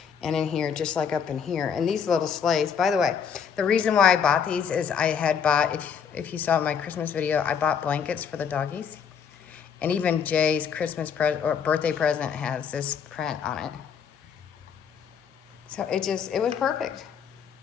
and in here, just like up in here. And these little sleighs, by the way, the reason why I bought these is I had bought, if you saw my Christmas video, I bought blankets for the doggies. And even Jay's Christmas present or birthday present has this print on it. So it was perfect.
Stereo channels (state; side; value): quieter; right; 7.2 dB